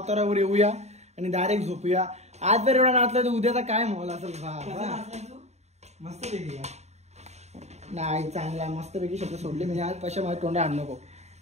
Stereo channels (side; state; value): left; late; 0.32 ms